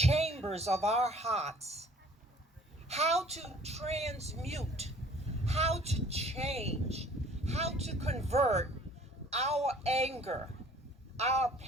of our hearts, how to transmute, how to change, how to convert our anger, our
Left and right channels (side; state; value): both; normal; correlation 0.53